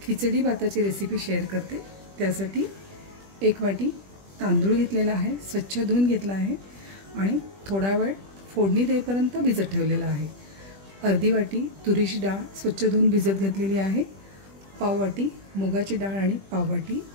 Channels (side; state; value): left; late; 20 ms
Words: खिचडी भाताची रेसिपी शेअर करते। त्यासाठी 1 वाटी तांदूळ घेतलेला आहे, स्वच्छ धुवून घेतला आहे आणि थोडा वेळ फोडणी देईपर्यंत भिजत ठेवलेला आहे। अर्धी वाटी तुरीची डाळ स्वच्छ धुवून भिजत घातलेली आहे। पाव वाटी मुगाची डाळ आणि पाव वाटी